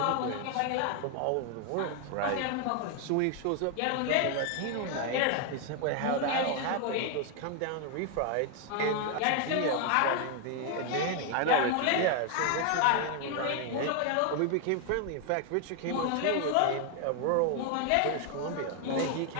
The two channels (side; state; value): both; different; correlation 0.00